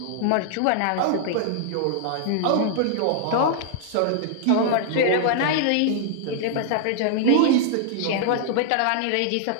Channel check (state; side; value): different; both; correlation -0.01